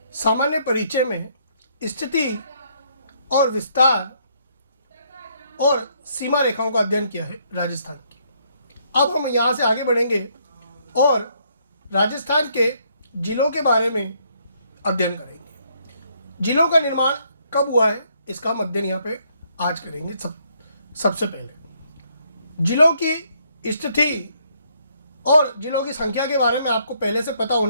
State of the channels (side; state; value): both; inverted; correlation -0.70